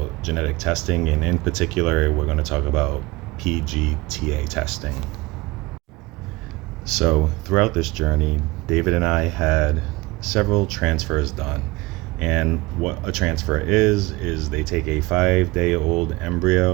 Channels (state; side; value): quieter; left; 22.1 dB